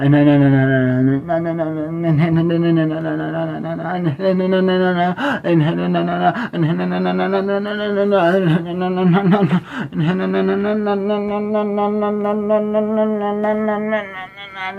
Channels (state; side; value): identical; both; correlation 1.00